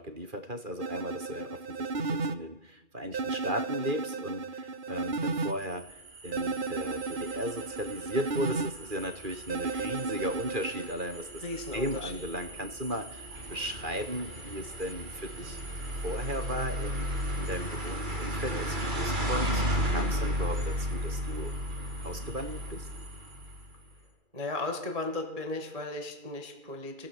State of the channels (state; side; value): late; left; 2.4 ms